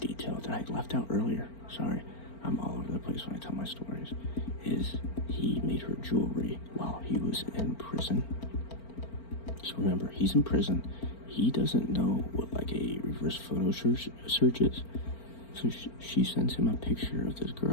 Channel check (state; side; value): late; right; 4.4 ms